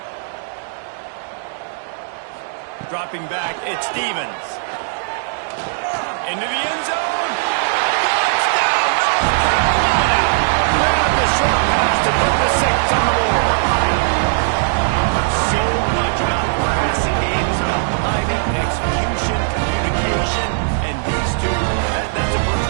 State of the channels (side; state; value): left; silent; digital silence